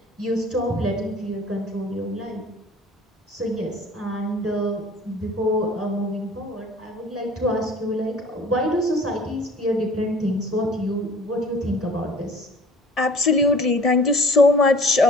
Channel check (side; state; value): both; normal; correlation 0.48